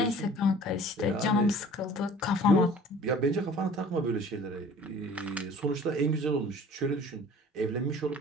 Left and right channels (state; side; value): normal; both; correlation 0.47